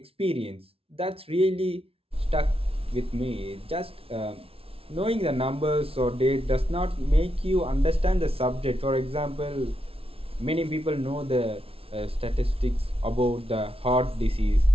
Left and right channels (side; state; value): left; late; 0.27 ms